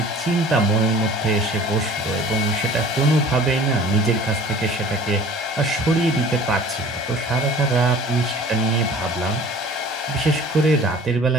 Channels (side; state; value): both; normal; correlation 0.46